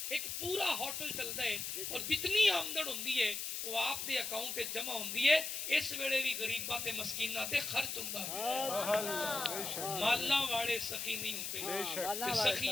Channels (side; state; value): left; noise; hiss, 4 dB below the sound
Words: ایک پورا ہوٹل چلدا ہے اور جتنی آمدن ہوندی ہے وہ آپ دے اکاؤنٹ تے جمع ہوندی ہے اس ویلے بھی غریباں تے مسکیناں تے خرچ ہوندا ہے مالاں والے سخی نہیں ہوندے تے